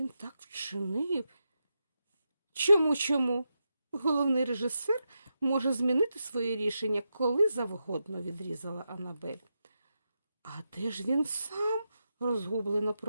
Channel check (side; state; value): both; inverted; correlation -0.87